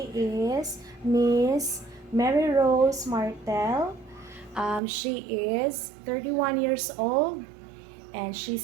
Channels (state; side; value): drops out; left; at 4.8 s